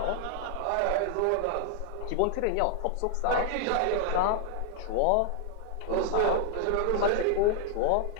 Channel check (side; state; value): both; different; correlation 0.00